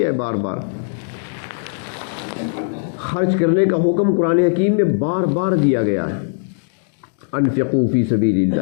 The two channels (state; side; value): silent; right; digital silence